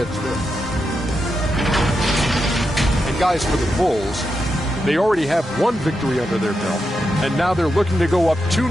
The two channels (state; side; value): normal; both; correlation 0.86